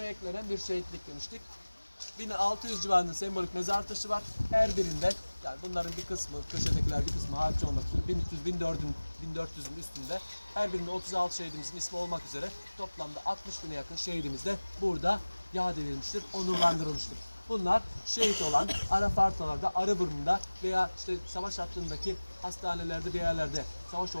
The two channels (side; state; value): both; inverted; correlation -1.00